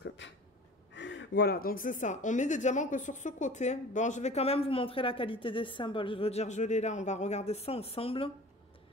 Voilà, donc c'est ça. On met des diamants que sur ce côté. Bon, je vais quand même vous montrer la qualité des symboles. Je veux dire, je l'ai là, on va regarder ça ensemble.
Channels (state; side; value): normal; both; correlation 0.41